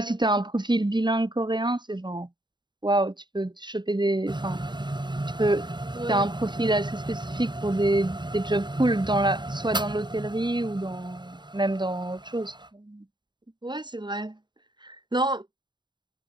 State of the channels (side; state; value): left; late; 0.22 ms